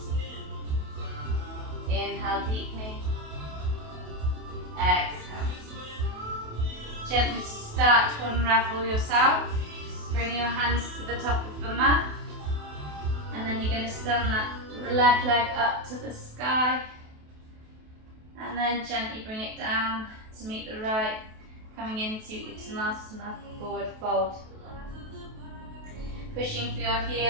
Inhale deeply. Exhale. Gently start to unravel yourself. Bring your hands to the top of the mat. And then you're going to stand that left leg up to the sky. And then gently bring it down to meet the right, coming into Uttanasana, forward fold. Pushing for your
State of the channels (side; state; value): left; late; 28 ms